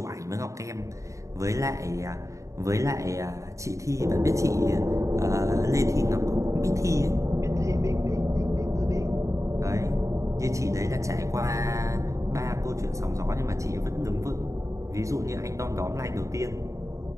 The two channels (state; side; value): late; left; 0.15 ms